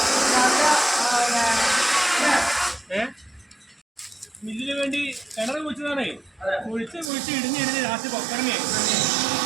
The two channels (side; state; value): left; drops out; at 7.1 s